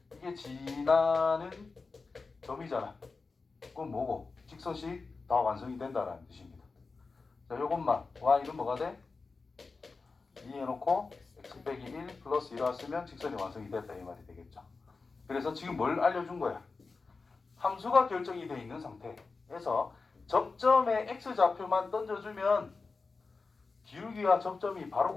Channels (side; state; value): right; quieter; 4.2 dB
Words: 이게 지나는 점이잖아. 그럼 뭐고? 직선식 다 완성이 된다라는 뜻입니다. 자, 요것만 y는 뭐가 돼? 2 해놓고 x 빼기 1 플러스 1을 쓰면 직선이 완성이 됐다 이 말이 되겠죠. 그래서 지금 뭘 알려준 거야? 함수가 결정이 되어 있는 상태에서 접점에 x좌표만 던져주면 기울기와 접점이 바로